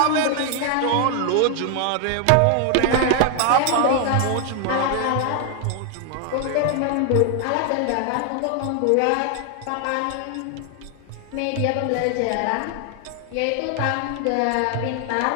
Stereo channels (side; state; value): both; different; correlation 0.00